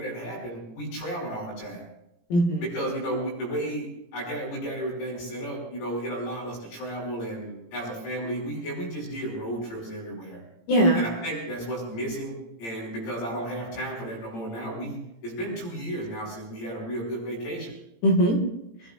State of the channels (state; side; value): late; right; 17 ms